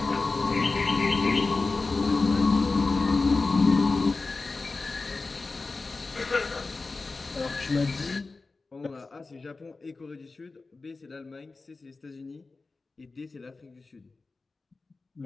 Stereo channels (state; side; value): quieter; right; 3.8 dB